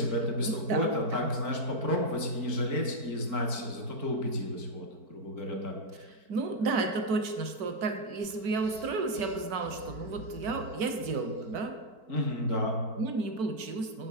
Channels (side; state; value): left; late; 4.5 ms